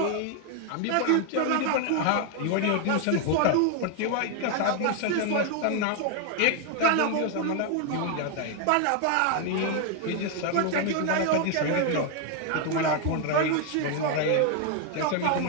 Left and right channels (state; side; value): different; both; correlation 0.01